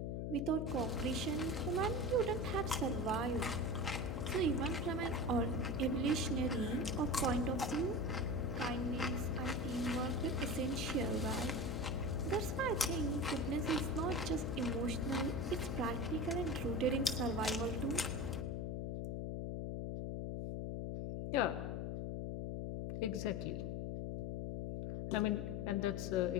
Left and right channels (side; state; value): left; noise; hum, 2 dB below the sound